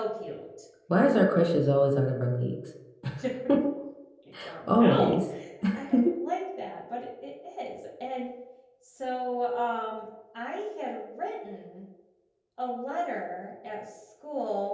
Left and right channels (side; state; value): both; identical; correlation 1.00